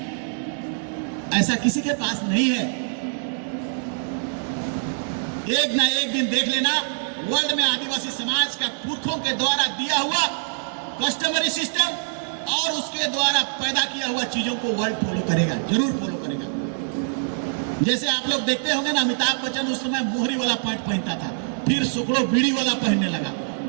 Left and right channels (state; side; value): silent; left; digital silence